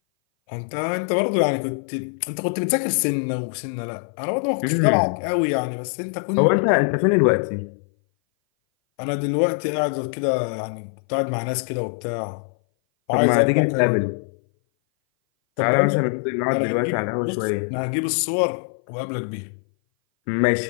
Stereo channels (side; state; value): right; silent; 58 dB below the other